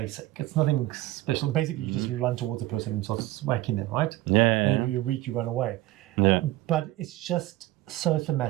It's nothing special. Basically, you just run towards a person and start whacking them, right? Yeah. And if you're weak, you run away. Yeah. But it's just so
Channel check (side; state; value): left; quieter; 17.2 dB